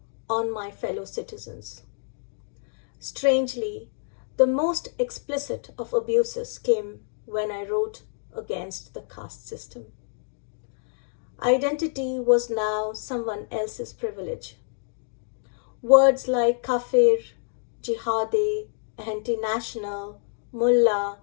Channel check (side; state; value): right; silent; digital silence